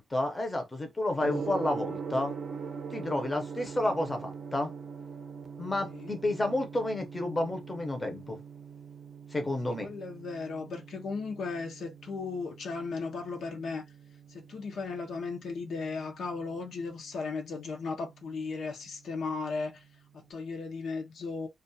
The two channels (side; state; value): both; normal; correlation 0.87